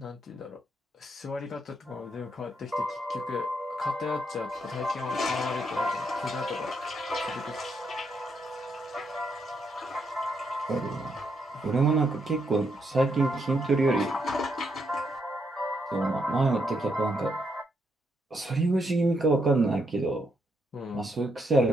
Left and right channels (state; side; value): normal; both; correlation 0.78